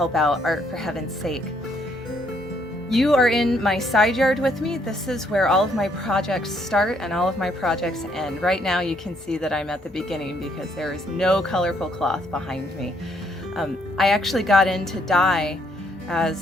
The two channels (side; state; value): both; normal; correlation 0.70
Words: out Art for Heaven's Sake. You are in my side yard with me. This is where all of my projects start and all of my projects end. Right now you can see that I'm at the beginning because there is no colorful cloth behind me. I actually got into dye